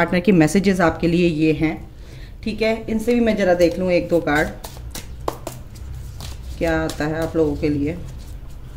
के मैसेजेस आपके लिए ये हैं। ठीक है, इनसे भी मैं ज़रा देख लूँ 1-2 कार्ड क्या आता है आप लोगों के लिए।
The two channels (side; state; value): both; identical; correlation 1.00